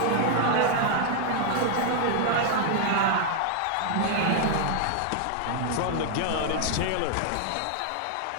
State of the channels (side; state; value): both; different; correlation 0.00